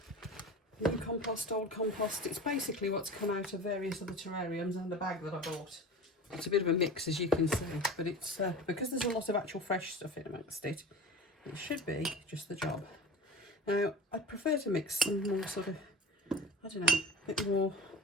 new compost, old compost. It's basically what's come out of various other terrariums and the bag that I bought. It's a bit of a mix, as you can see, but it's because there's a lot of actual fresh stuff in amongst it, it should be just the job. Now, I'd prefer to mix some more sort of, I don't know, a bit more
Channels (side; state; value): both; normal; correlation 0.35